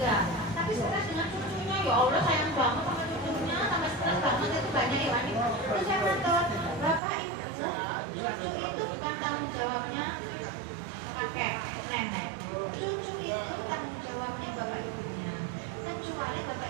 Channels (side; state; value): left; drops out; at 7.0 s